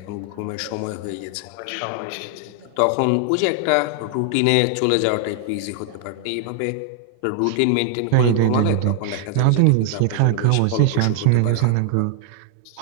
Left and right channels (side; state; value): both; different; correlation 0.00